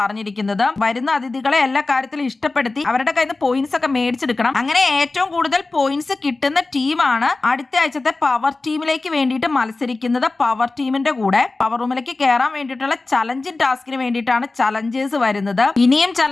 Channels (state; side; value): quieter; right; 3.4 dB